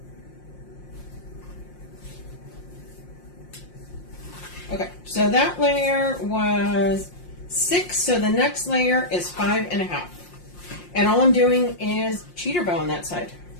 Okay, so that layer was 6, so the next layer is 5.5. And all I'm doing is cheater bow on that side.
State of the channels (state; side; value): late; right; 5.6 ms